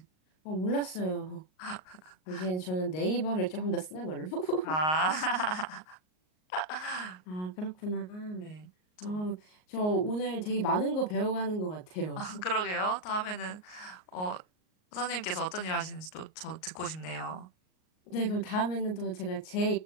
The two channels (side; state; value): right; late; 38 ms